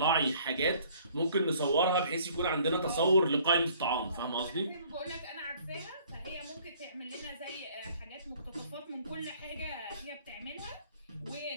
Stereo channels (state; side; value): inverted; both; correlation -0.57